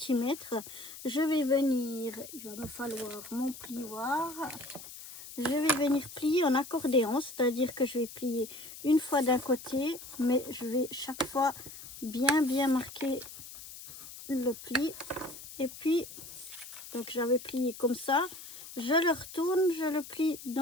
Je vais venir, il va me falloir mon plioir. Je vais venir plier en accordéon, c'est-à-dire que je vais plier une fois d'un côté, mais je vais chaque fois bien marquer le pli. Et puis, donc j'avais plié comme ça, je le retourne, je le plie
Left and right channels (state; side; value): noise; left; hiss, 14 dB below the sound